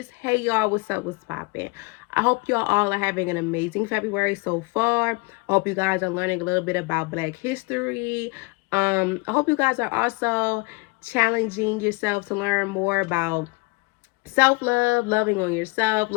hey y'all, what's up, what's poppin'? I hope y'all all are having an amazing February so far. I hope you guys are learning a little bit about Black history. I hope you guys are also challenging yourself to learn more about self-love, loving on yourself,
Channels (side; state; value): right; quieter; 26.9 dB